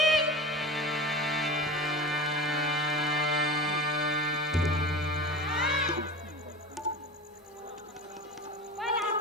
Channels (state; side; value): normal; both; correlation 0.32